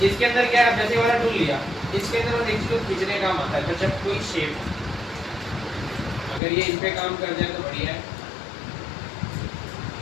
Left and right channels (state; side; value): drops out; right; at 6.4 s